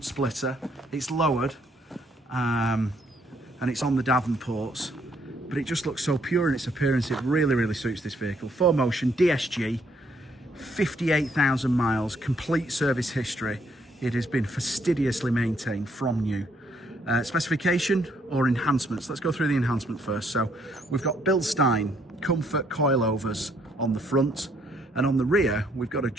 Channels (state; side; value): normal; both; correlation 0.69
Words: splitter, it's lowered, and it's on the Davenports, but it just looks so pure in its appearance. It really suits this vehicle. BlueMotion DSG, 58,000 miles, complete service history. It has been fastidiously maintained from new. Specification or enhancements. Let's go through the enhancement first. So we've got bilstein comfort coilovers on the front, and on the rear we've got